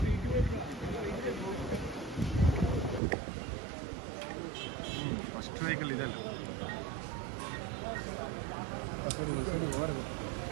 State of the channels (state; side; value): drops out; left; at 3.0 s